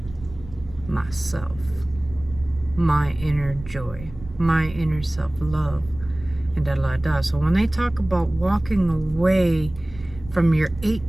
Myself. My inner joy. My inner self-love. And da-da-da. So when they talk about walking away from your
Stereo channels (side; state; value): right; noise; rumble, 16 dB below the sound